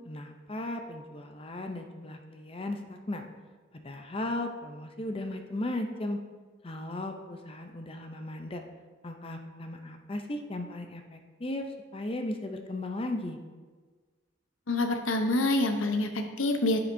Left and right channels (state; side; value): normal; both; correlation 0.50